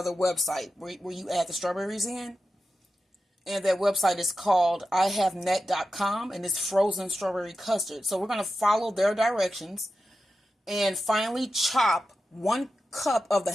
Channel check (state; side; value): normal; both; correlation 0.92